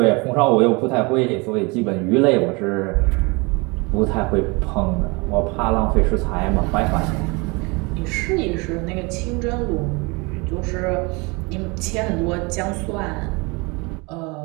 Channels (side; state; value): left; quieter; 27.6 dB